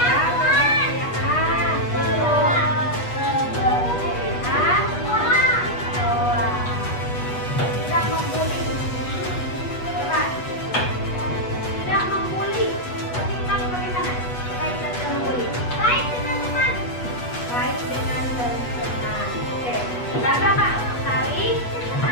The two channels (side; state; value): right; late; 8.2 ms